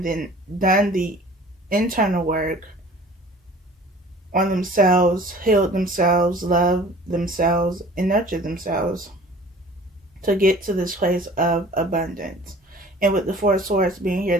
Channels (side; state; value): both; normal; correlation 0.47